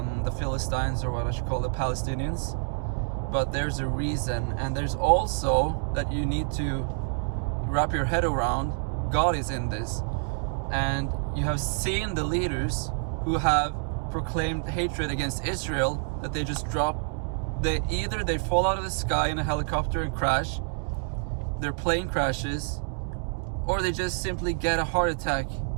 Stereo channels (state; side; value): silent; left; 60 dB below the other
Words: Philistines, or what I should call the Palestinians. But there's a reason, and there's also that you need to wrap your head around. God is in this, and you have seen the leaders who have proclaimed hatred against Israel, that they just drop. Either they fall out of the sky in a helicopter and crash, their plane crashes, or they just simply get a heart attack